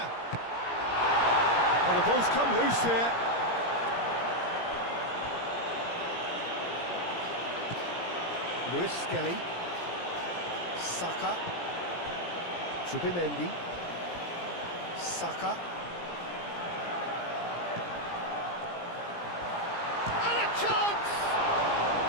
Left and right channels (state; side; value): late; right; 17 ms